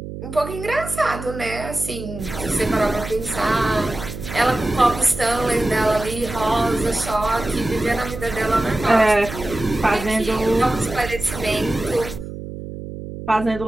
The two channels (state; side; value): noise; right; hum, 10 dB below the sound